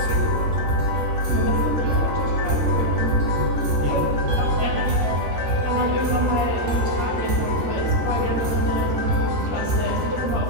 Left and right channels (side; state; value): left; late; 14 ms